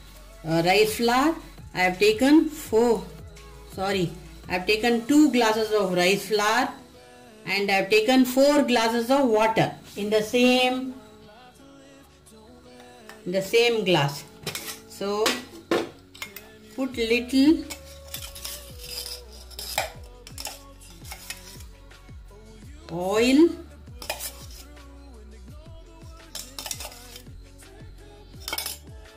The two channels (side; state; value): both; identical; correlation 1.00